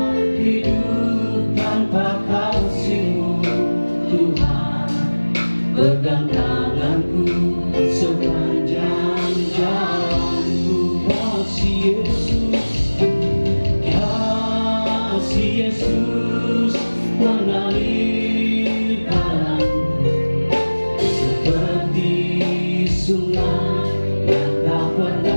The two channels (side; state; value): both; inverted; correlation -1.00